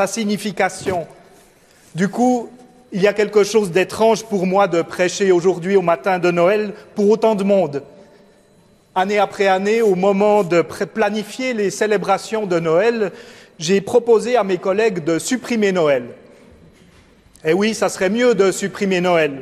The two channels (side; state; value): both; identical; correlation 1.00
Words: signification. Du coup, il y a quelque chose d'étrange pour moi de prêcher aujourd'hui au matin de Noël pour autant de monde. Année après année, au moment de planifier les célébrations de Noël, j'ai proposé à mes collègues de supprimer Noël. Et oui, ça serait mieux de supprimer Noël.